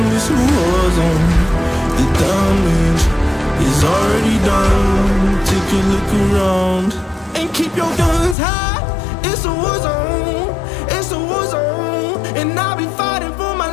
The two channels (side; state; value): right; drops out; at 8.3 s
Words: it's a war zone. The damage is already done. Take a look around and keep your guns high. It's a war zone. It's a war zone, and I'll be fighting for my